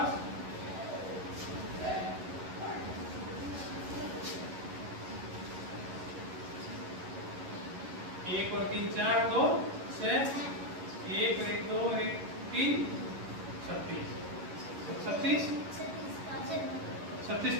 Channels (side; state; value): left; late; 11 ms